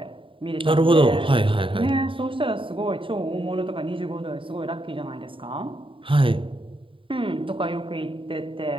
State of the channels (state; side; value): late; left; 0.25 ms